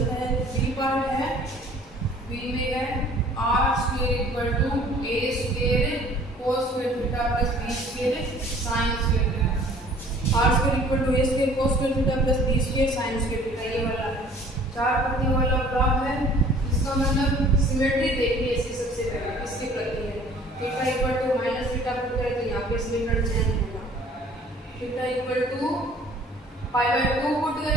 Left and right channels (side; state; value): both; normal; correlation 0.53